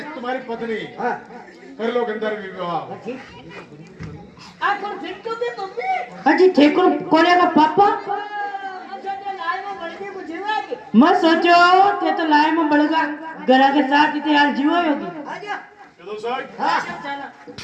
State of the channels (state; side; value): identical; both; correlation 1.00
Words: तुम्हारी पत्नी कर लो गंधर्व विवाह। अजी ठेकुर कोने का पापा मैं सोचो ते तो लाए में बड़गा गला के साथ इतने हाल जीवा होगी। विदूषक,